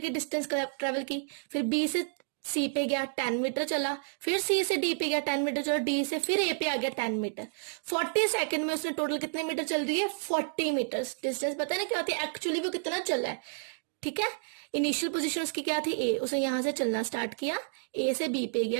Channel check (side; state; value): left; silent; digital silence